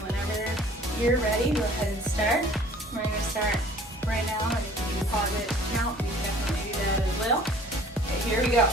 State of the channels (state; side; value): normal; both; correlation 0.51